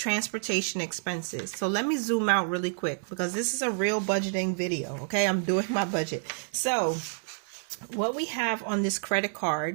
expenses. So let me zoom out really quick because this is a real budgeting video. Okay, I'm doing my budget. So what we have on this credit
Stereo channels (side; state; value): left; silent; digital silence